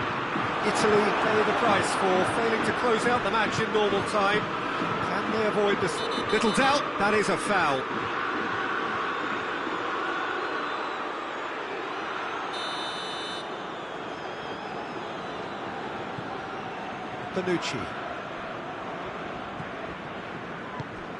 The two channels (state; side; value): identical; both; correlation 1.00